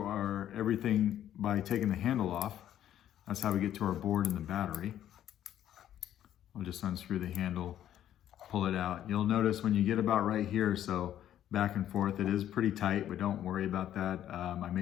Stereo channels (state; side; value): quieter; right; 11.3 dB